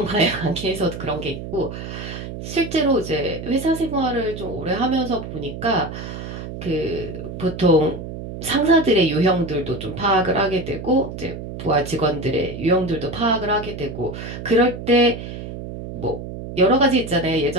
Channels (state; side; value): noise; right; hum, 9 dB below the sound